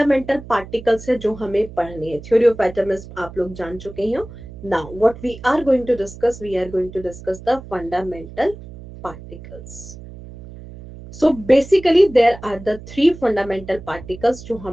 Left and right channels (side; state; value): right; noise; hum, 15 dB below the sound